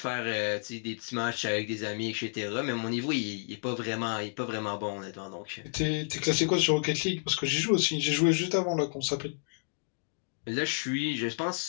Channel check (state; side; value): silent; right; digital silence